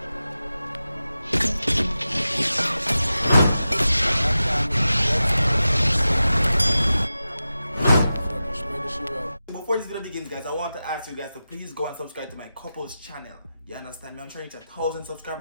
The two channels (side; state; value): both; inverted; correlation -0.93